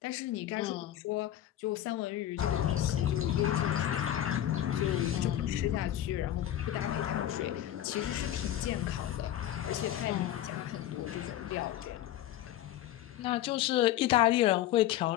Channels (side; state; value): right; quieter; 12.5 dB